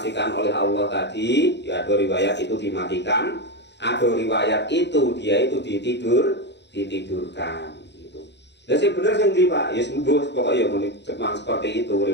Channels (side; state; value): right; late; 0.51 ms